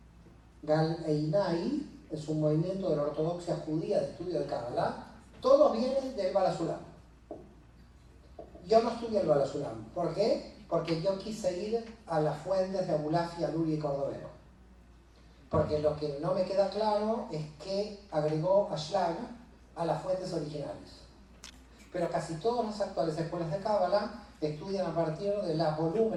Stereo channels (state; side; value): identical; both; correlation 1.00